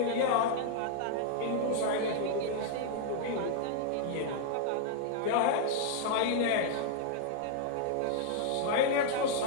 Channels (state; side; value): different; both; correlation 0.00